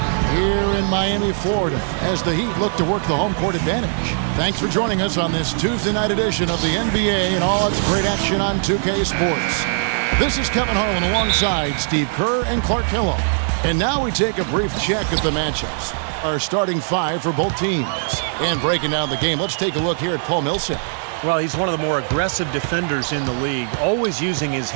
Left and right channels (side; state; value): left; silent; digital silence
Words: here in Miami, Florida, as the Heat look to work the home court advantage. Thanks for joining us on this Tuesday night edition of the NBA and all its great action on 2K Sports. This is Kevin Harlan alongside Steve Kerr and Clark Hillo. And now we take a brief check at the matchups. Our starting five for both teams. And breaking down the game, let's take a look here at Paul Millsap. Well, he's one of the more aggressive defenders in the league, always using his